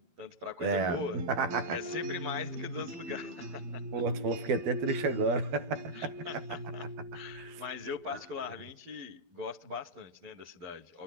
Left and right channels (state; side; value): late; left; 12 ms